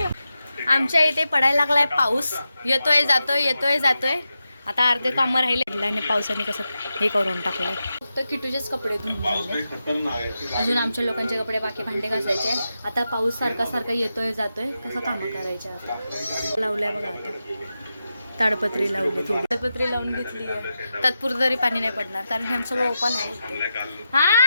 आमच्या इथे पडायला लागलाय पाऊस, येतोय जातोय येतोय जातोय. आता अर्धे कामं राहिले आणि पावसाने कसं हे करून टाकलंय. फक्त किटूचेच कपडे धुवून झाले, अजून आमच्या लोकांचे कपडे बाकी भांडे घासायचे. आता पाऊस सारखा सारखा येतोय जातोय, कसं कामं करायचे. आता लावलंय बघा, आता ताडपत्री लावली, थोडी ताडपत्री लावून घेतली आहे. तात्पुरतं तरी पाणी नाही पडणार कारण हे सगळं ओपन आहे.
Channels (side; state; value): both; inverted; correlation -0.89